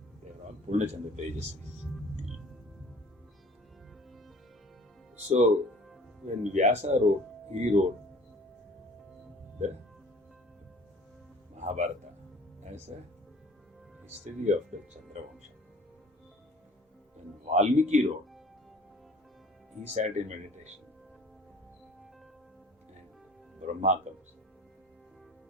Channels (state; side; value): normal; both; correlation 0.49